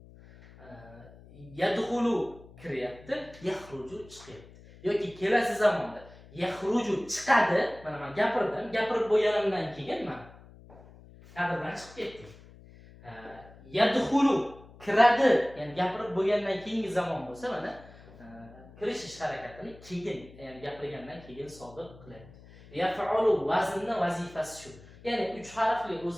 Yadxulu kiryapti, yaxruju chiqyapti. Yoki kelasi zamonda yaxruju chiqadi. Mana men gapirib bo'lganimdan keyin men kadrdan chiqib ketdim. Yadxulu kiradi, ya'ni gapirib bo'lgandan keyingi zamon bo'lsa, mana kirish ish harakatini keyin, ya'ni gapirgandan keyin sodir qilyapti. Yaf'alu vaznning vazifasi shu. Ya'ni 3 harfli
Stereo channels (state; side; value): noise; left; hum, 21 dB below the sound